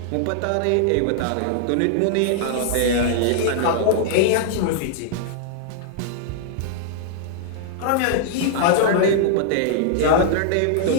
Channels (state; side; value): different; both; correlation -0.01